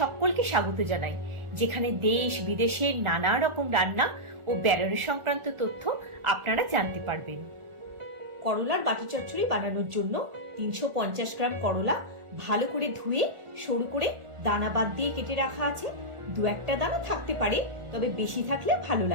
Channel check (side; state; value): left; late; 1.4 ms